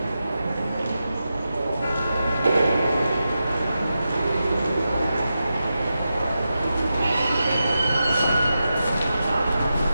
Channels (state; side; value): inverted; both; correlation -0.90